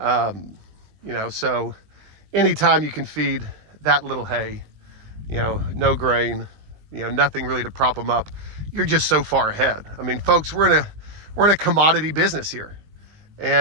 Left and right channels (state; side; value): late; left; 19 ms